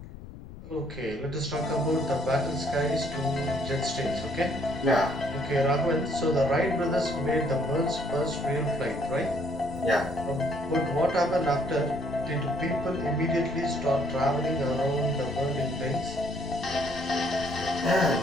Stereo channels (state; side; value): noise; left; rumble, 15 dB below the sound